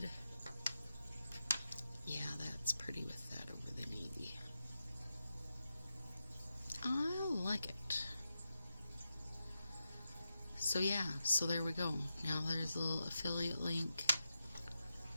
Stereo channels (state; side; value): inverted; both; correlation -0.88